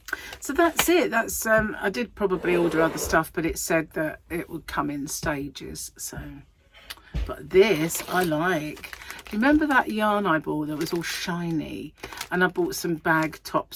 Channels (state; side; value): identical; both; correlation 1.00